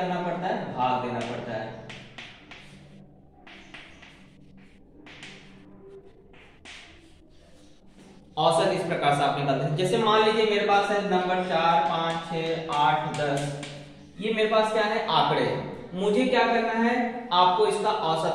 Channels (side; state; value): both; identical; correlation 1.00